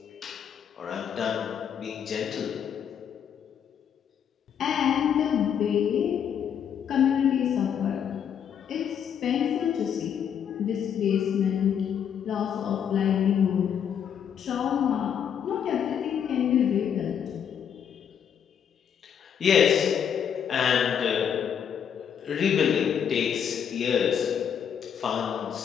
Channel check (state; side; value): quieter; right; 8.3 dB